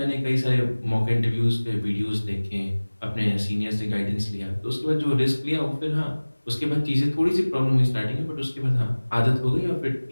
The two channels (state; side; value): inverted; both; correlation -1.00